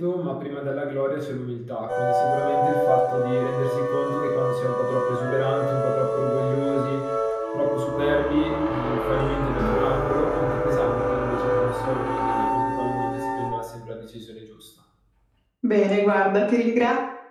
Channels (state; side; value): identical; both; correlation 1.00